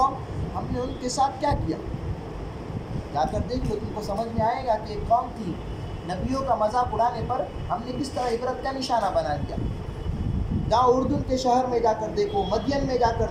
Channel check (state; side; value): identical; both; correlation 1.00